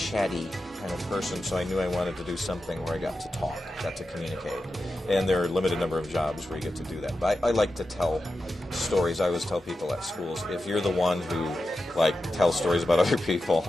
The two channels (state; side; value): normal; both; correlation 0.91